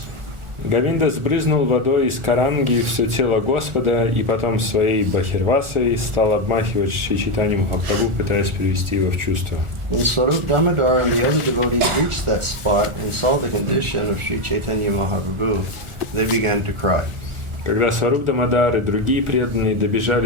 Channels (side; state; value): left; late; 1.4 ms